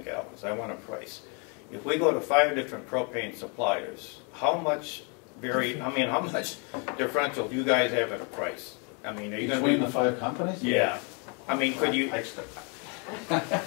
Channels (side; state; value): right; quieter; 35.5 dB